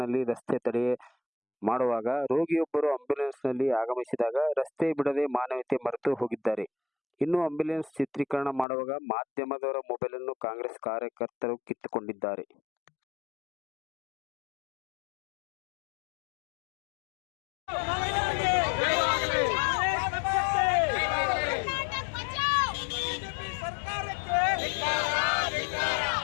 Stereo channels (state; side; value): drops out; right; at 8.7 s